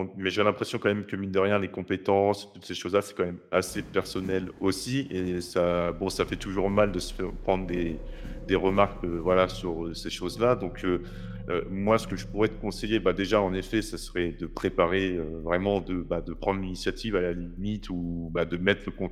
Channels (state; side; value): identical; both; correlation 1.00